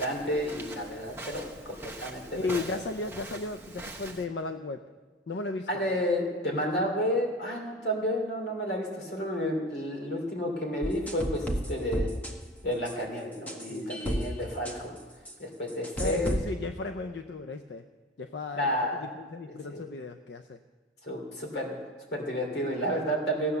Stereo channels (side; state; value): both; normal; correlation 0.33